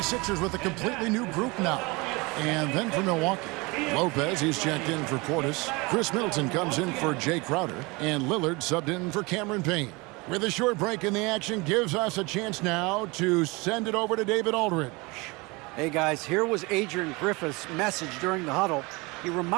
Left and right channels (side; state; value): left; quieter; 25.5 dB